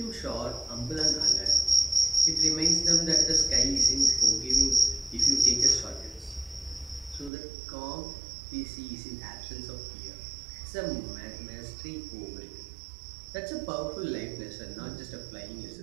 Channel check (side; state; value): left; drops out; at 7.3 s